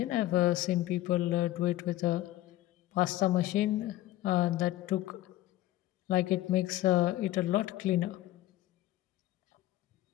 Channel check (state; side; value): quieter; right; 15.2 dB